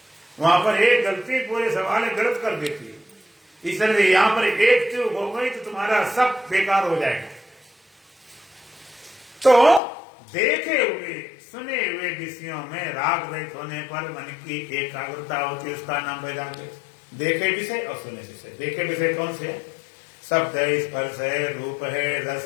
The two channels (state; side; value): drops out; right; at 9.8 s